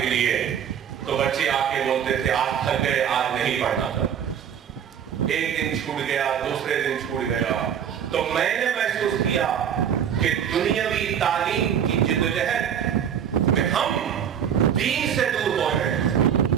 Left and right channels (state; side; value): quieter; left; 8.7 dB